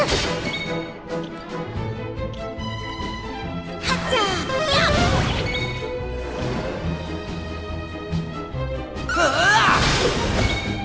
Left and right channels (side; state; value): both; identical; correlation 1.00